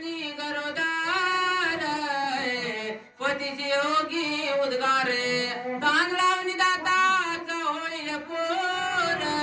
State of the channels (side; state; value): both; identical; correlation 1.00